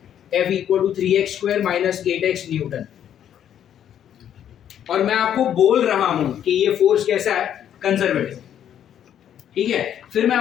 F equal to 3x square minus 8x newton, और मैं आपको बोल रहा हूं कि ये फोर्स कैसा है? कंजर्वेटिव। ठीक है, फिर मैं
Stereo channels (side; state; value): right; quieter; 9.9 dB